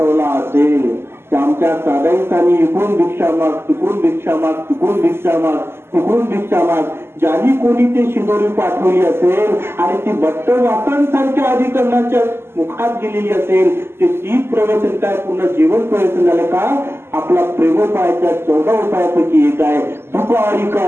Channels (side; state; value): left; late; 0.12 ms